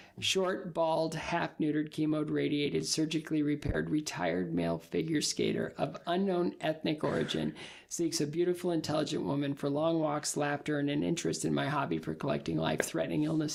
short, bald, half-neutered, chemoed, radiated, surgically repaired, retired male figure skater of unknown ethnic origin, seeks a beautiful, intelligent woman for long walks, laughter, and an interest in my hobby for collecting life-threatening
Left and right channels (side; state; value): both; identical; correlation 1.00